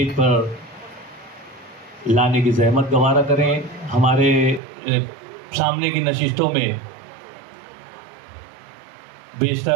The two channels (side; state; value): left; drops out; at 4.6 s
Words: پر لانے کی زحمت گوارا کریں۔ ہمارے سامنے کی نشستوں میں